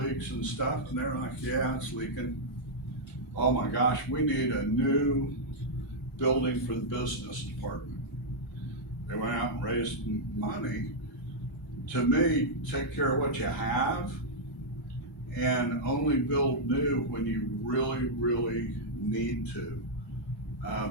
and stuff, and they're like, yeah, it's leaking. Oh my gosh, we need a new building for the business department. They went out and raised money. To me, take care of what you have and only build new when you really, really need to.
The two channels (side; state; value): both; normal; correlation -0.06